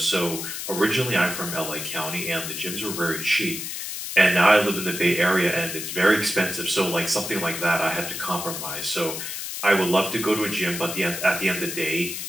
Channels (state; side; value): noise; left; hiss, 6 dB below the sound